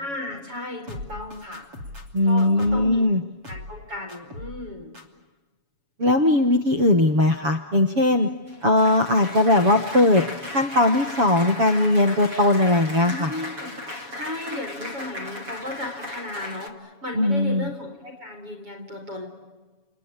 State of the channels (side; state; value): left; late; 7.1 ms